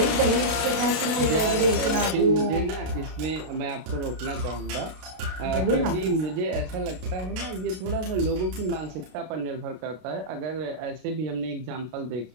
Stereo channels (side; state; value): left; late; 32 ms